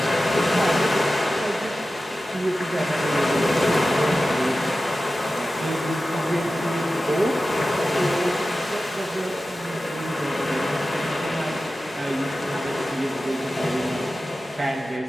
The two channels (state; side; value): normal; both; correlation 0.94